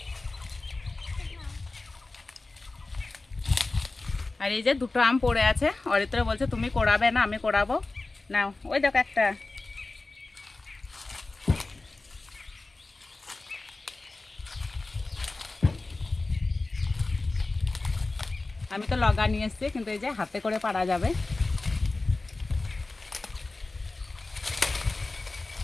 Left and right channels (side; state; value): right; quieter; 3.3 dB